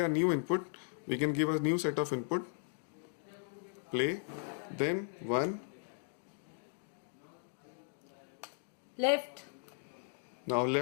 new input. We can give a new set of input. Play. Then 1. Left. Now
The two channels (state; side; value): silent; right; digital silence